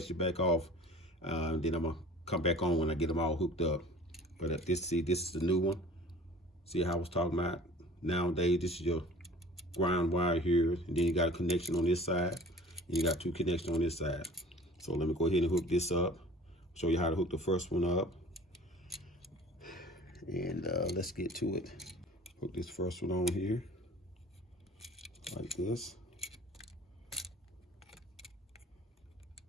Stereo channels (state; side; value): normal; both; correlation 0.46